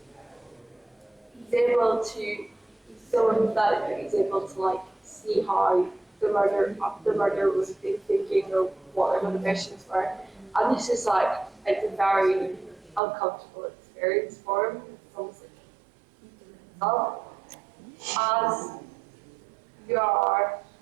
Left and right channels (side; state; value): left; drops out; at 13.0 s